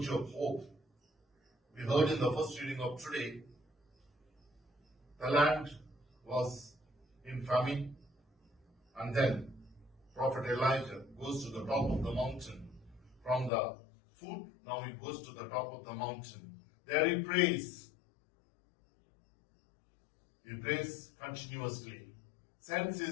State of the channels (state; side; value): drops out; right; at 13.5 s